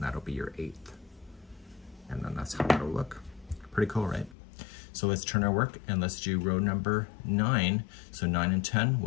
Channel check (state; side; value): drops out; right; at 4.4 s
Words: that'll be your 8th. And then that's how it'll look. Pretty cool, right? So let's turn our work and let's do row number 9. So 9 and 10